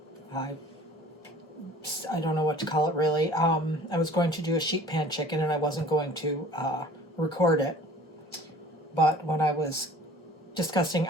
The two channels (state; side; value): normal; both; correlation 0.47